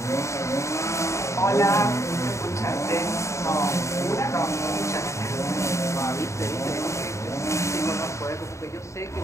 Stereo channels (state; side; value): late; right; 0.14 ms